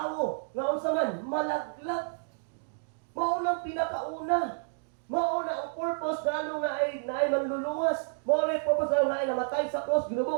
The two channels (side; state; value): left; silent; digital silence